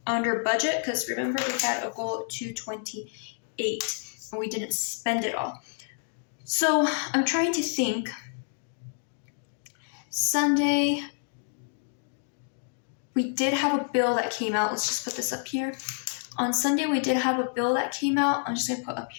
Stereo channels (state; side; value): silent; right; 59 dB below the other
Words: under budget because remember we had a goal of 228 and we didn't spend it all. So I'm trying to think. Sunday, we did have a bill that came out. Let's just put this up here. On Sunday, we did have a bill that came out. I'm just going to put up